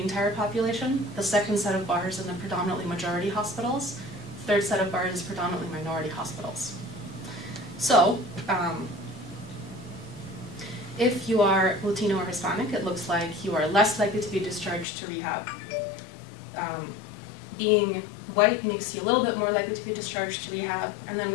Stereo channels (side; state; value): right; drops out; at 14.9 s